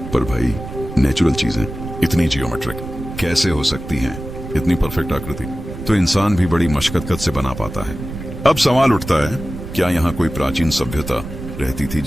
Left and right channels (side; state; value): right; noise; rumble, 10 dB below the sound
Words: पर भाई, नेचुरल चीजें इतनी जियोमेट्रिक कैसे हो सकती हैं? इतनी परफेक्ट आकृति तो इंसान भी बड़ी मशक्कत से बना पाता है। अब सवाल उठता है, क्या यहाँ कोई प्राचीन सभ्यता रहती थी